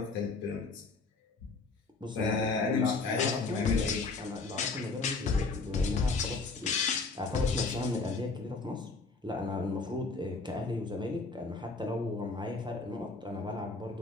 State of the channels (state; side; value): quieter; right; 3.9 dB